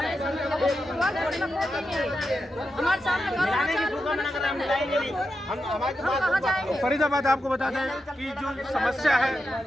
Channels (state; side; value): normal; both; correlation 0.88